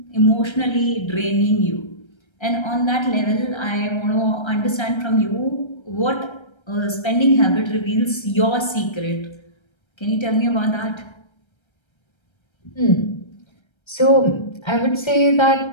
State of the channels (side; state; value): right; late; 1.3 ms